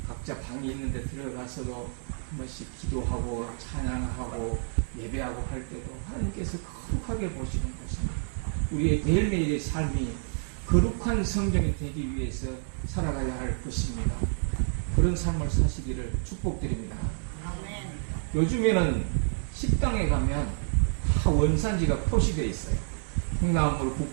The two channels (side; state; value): left; silent; digital silence